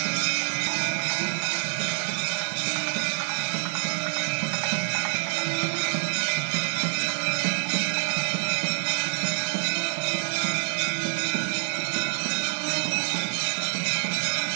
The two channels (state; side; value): silent; left; 60 dB below the other